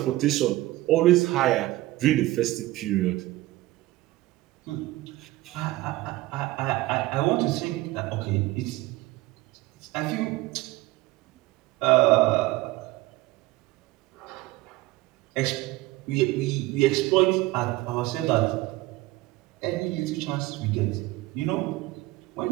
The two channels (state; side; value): quieter; left; 18.2 dB